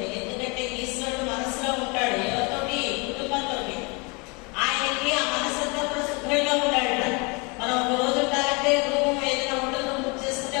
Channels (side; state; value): right; quieter; 29.8 dB